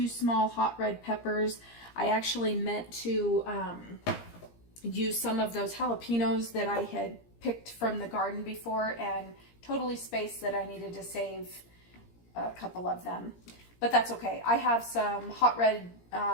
small hot red peppers. I actually meant to use some of those jalapenos that I had picked from the garden before, and totally spaced that I needed to save a couple of them. But that's okay. I have some hot red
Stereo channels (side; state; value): right; late; 17 ms